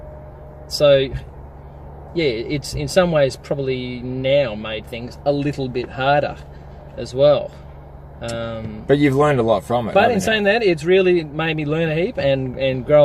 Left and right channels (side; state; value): both; identical; correlation 1.00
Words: So yeah, it's in some ways probably now made things a little bit harder as well. But you've learned a lot from it. But in saying that, it's really made me learn a heap and